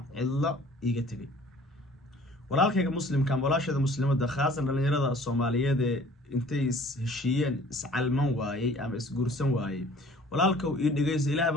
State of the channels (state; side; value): normal; both; correlation 0.52